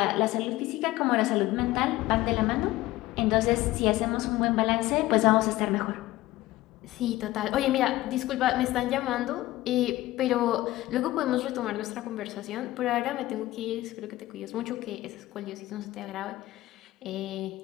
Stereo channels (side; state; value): right; quieter; 17.1 dB